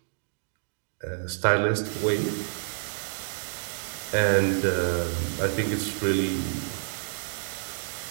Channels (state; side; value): silent; left; digital silence